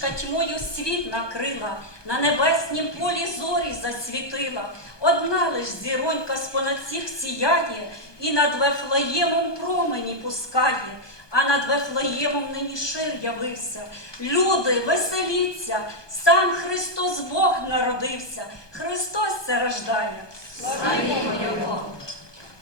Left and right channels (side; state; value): right; late; 1.2 ms